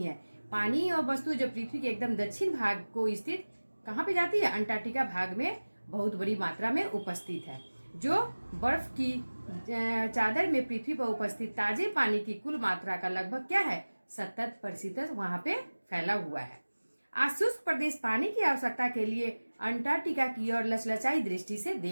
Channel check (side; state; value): both; inverted; correlation -1.00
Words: है। पानी और वस्तु जो पृथ्वी के एकदम दक्षिण भाग को स्थित कहाँ पे जाती है, अंटार्कटिका भाग में बहुत बड़ी मात्रा में उपस्थित है। जो बर्फ की चादर में पृथ्वी पर उपस्थित ताजे पानी की कुल मात्रा का लगभग क्या है, 70% वहां पे फैला हुआ है। आज शुष्क प्रदेश पानी की आवश्यकता के लिए अंटार्कटिका की ओर लचलचाई दृष्टि से